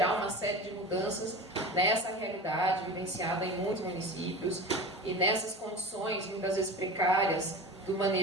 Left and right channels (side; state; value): both; normal; correlation 0.32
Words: uma série de mudanças nessa realidade vivenciada em muitos municípios e nessas condições, muitas vezes precárias, do